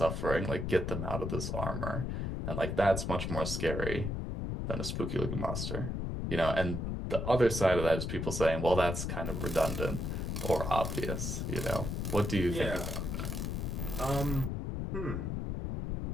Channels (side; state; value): left; noise; rumble, 2 dB below the sound